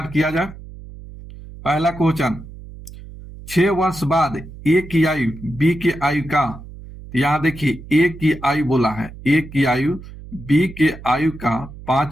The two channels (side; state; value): right; noise; hum, 15 dB below the sound